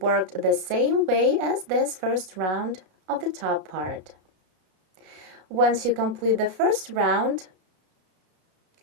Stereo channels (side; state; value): left; late; 32 ms